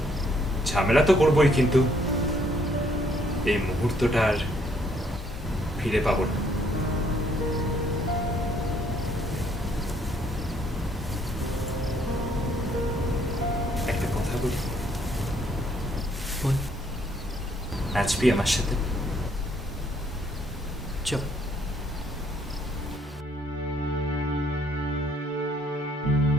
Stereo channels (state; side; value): normal; both; correlation 0.67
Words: ঝামেলা তো করবোই, কিন্তু এই মুহূর্তটা আর ফিরে পাবো না। একটা কথা বলি, বল। নাচবি আমার সাথে? চল।